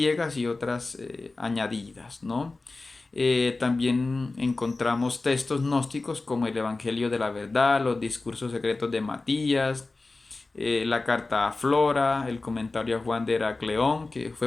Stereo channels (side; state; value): right; quieter; 3.4 dB